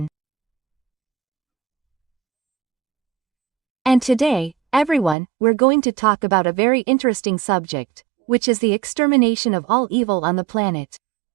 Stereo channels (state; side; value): drops out; left; at 5.2 s